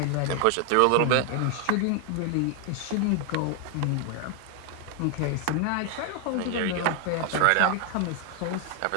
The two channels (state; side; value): different; both; correlation 0.00